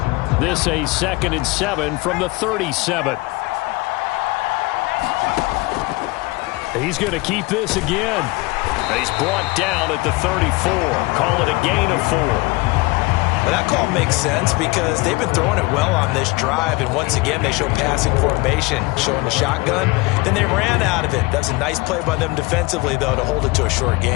This a 2nd and 7 from the 37. He's going to keep this again. He's brought down at the 34. Call it a gain of 4. Well, that call makes sense because they've been throwing it well on this drive, and once again they show passing formation, showing the shotgun. Then they ran out of it. That was a nice play by them defensively, though, to hold it to a short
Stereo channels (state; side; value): quieter; right; 23.6 dB